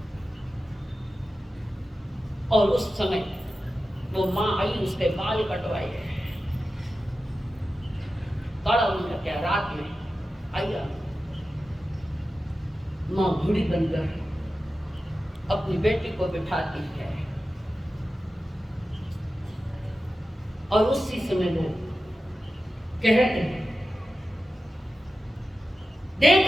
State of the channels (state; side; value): normal; both; correlation 0.93